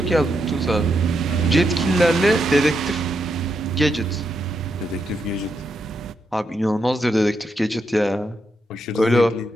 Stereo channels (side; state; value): both; normal; correlation 0.82